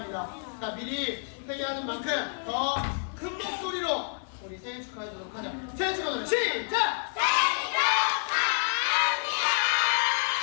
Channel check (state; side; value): silent; right; 58 dB below the other